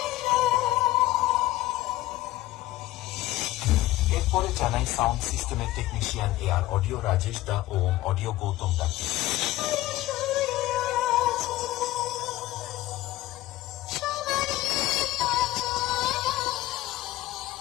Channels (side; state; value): right; quieter; 16.4 dB